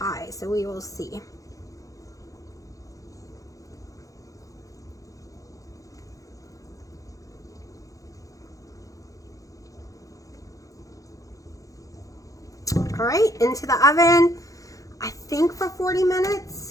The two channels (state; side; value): late; right; 0.16 ms